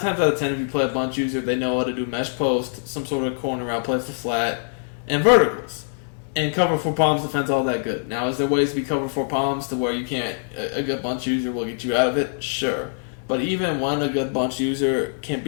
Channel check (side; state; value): right; silent; digital silence